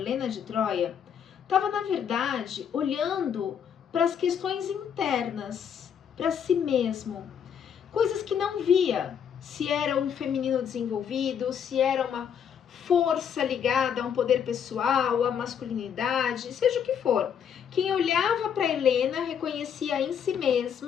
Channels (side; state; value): right; quieter; 8.1 dB